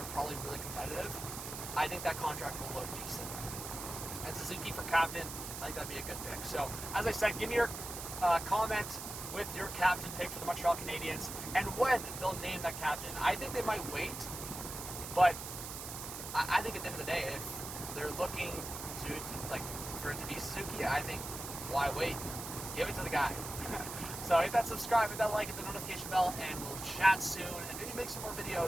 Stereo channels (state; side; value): noise; right; hiss, 8 dB below the sound